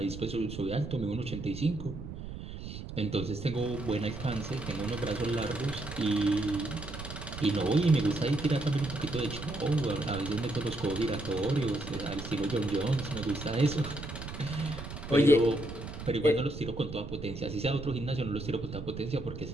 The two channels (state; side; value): noise; right; rumble, 9 dB below the sound